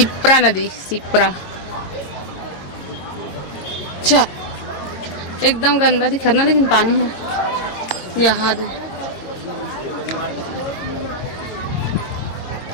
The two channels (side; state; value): right; late; 22 ms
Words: नदी सिप्रा। अच्छा एकदम गंदा दिख रहा लेकिन पानी है यहाँ दे।